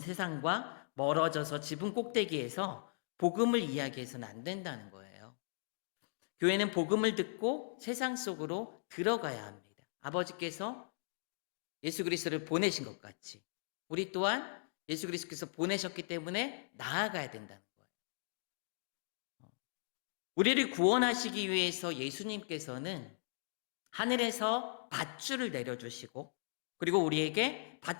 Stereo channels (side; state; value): right; silent; digital silence